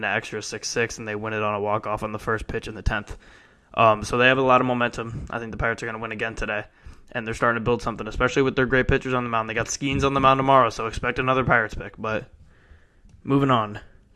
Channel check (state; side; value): identical; both; correlation 1.00